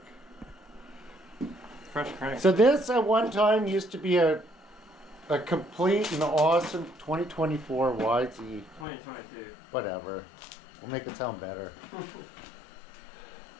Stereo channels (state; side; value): drops out; right; at 8.8 s